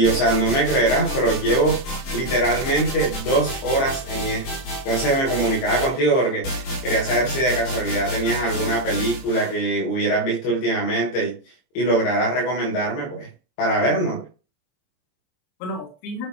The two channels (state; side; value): late; right; 22 ms